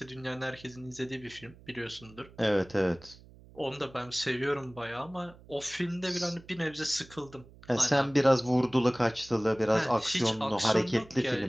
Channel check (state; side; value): noise; right; hum, 22 dB below the sound